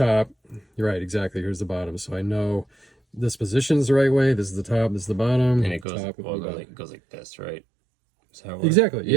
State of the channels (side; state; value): left; drops out; at 5.9 s